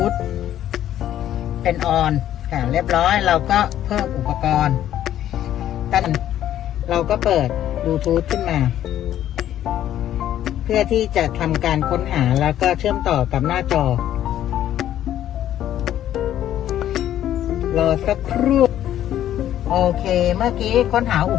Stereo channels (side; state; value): right; quieter; 11.7 dB